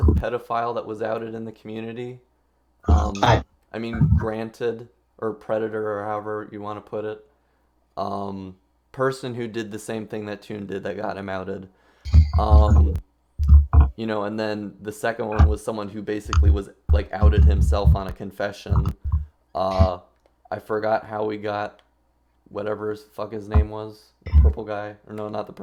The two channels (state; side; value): identical; both; correlation 1.00